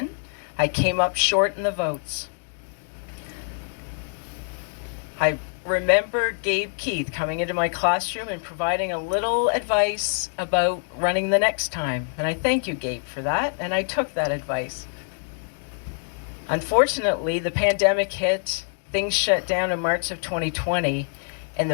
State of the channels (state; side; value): silent; right; 62 dB below the other